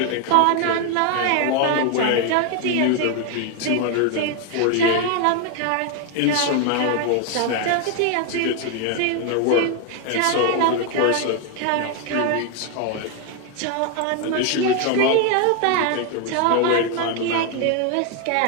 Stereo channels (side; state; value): both; different; correlation 0.01